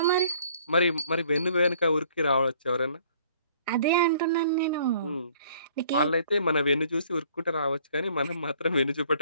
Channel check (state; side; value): inverted; both; correlation -0.59